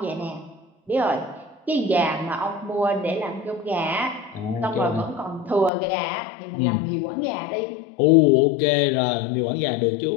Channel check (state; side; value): drops out; right; at 5.7 s